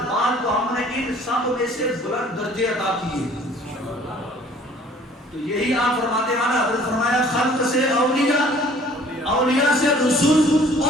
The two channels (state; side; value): normal; both; correlation 0.54